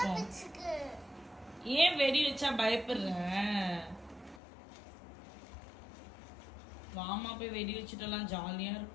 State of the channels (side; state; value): right; drops out; at 4.4 s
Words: ஏன் வெடி வச்சா பயப்படுற? வாமா போய் வெடி வச்சுட்டலாம், ஜாலியா